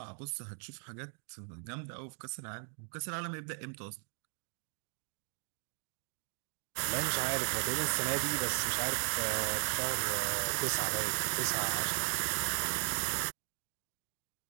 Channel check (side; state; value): left; silent; 53 dB below the other